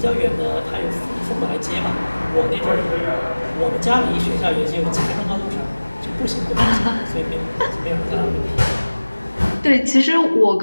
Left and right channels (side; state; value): both; inverted; correlation -1.00